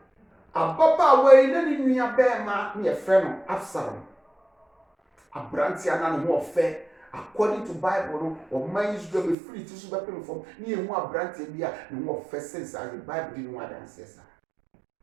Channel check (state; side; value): drops out; left; at 9.3 s